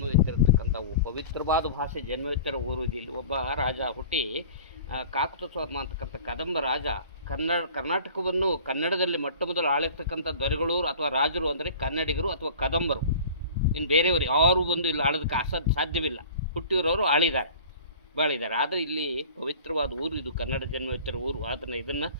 ಪವಿತ್ರವಾದ ಭಾಷೆ ಜನ್ಮವೆತ್ತಿರೋ ಊರು ಇಲ್ಲಿ. ಒಬ್ಬ ರಾಜ ಹುಟ್ಟಿ ಕಾಕುತಸೋರ್ಮ ಅಂತಕ್ಕಂಥ ಕದಂಬ ರಾಜ ಕರ್ನಾಟಕವನ್ನು ಕನ್ನಡದಲ್ಲಿ ಮೊಟ್ಟ ಮೊದಲು ಆಳಿರ್ತಕ್ಕಂಥ ದೊರೆಗಳು ಅಥವಾ ರಾಜರು ಅಂದರೆ ಕನ್ನಡಿಗರು ಅಥವಾ ಕದಂಬರು. ಇನ್ನು ಬೇರೆಯವರು ಯಾರು ಬಂದು ಇಲ್ಲಿ ಆಳೋದಕ್ಕೆ ಸಾಧ್ಯವಿಲ್ಲ. ಹುಟ್ಟಿರೋರು ಬಾಳಿದ್ದಾರೆ. ಆದರೆ ಇಲ್ಲಿ ಪವಿತ್ರವಾದ ಊರು ಇದು, ಕನ್ನಡ ಜನ್ಮವೆತ್ತಿರೋ ಊರು. ಅದನ್ನು ಇದನ್ನು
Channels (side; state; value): both; inverted; correlation -0.43